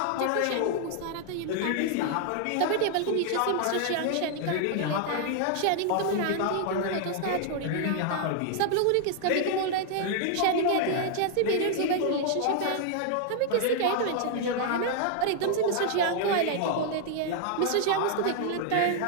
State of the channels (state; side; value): different; both; correlation 0.00